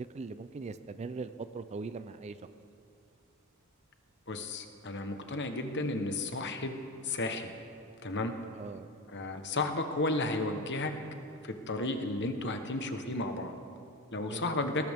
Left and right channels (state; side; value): normal; both; correlation 0.24